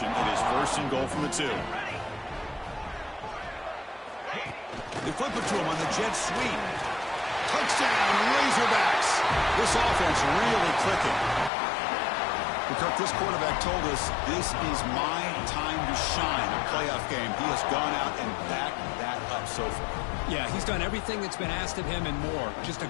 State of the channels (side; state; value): right; drops out; at 11.5 s